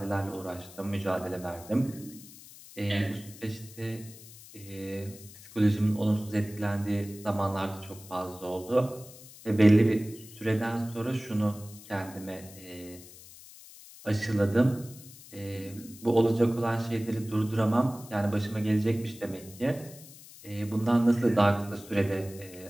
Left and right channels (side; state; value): left; noise; hiss, 19 dB below the sound